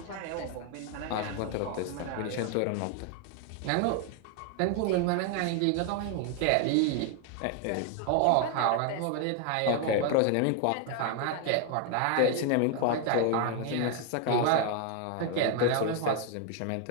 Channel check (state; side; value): different; both; correlation 0.01